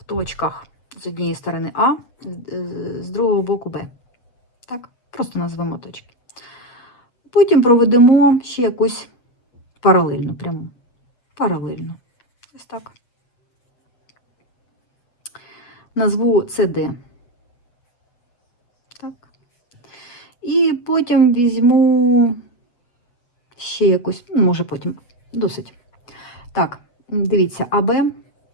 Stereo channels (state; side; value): late; right; 8.2 ms